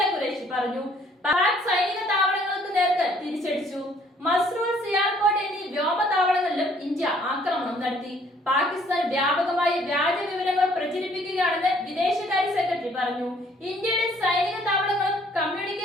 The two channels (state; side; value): normal; both; correlation 0.61